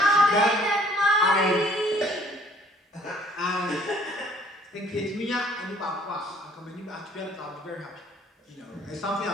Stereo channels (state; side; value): normal; both; correlation 0.58